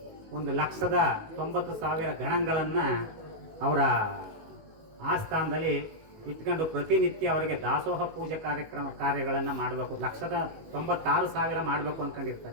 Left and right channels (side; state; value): left; late; 19 ms